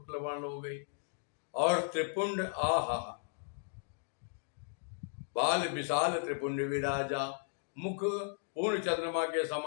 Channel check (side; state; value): right; silent; digital silence